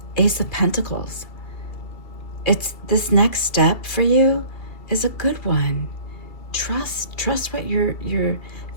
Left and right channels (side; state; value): right; late; 2.7 ms